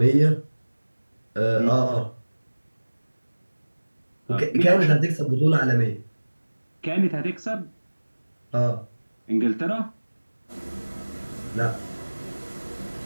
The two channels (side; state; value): both; inverted; correlation -1.00